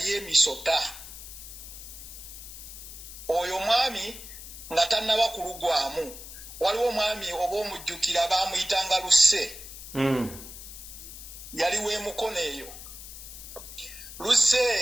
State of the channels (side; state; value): left; noise; hiss, 13 dB below the sound